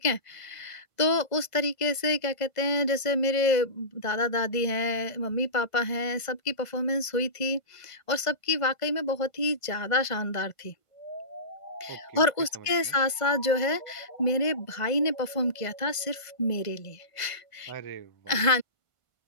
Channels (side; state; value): right; late; 1.5 ms